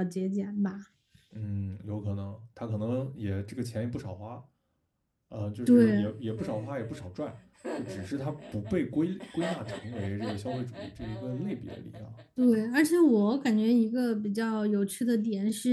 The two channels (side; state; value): both; identical; correlation 1.00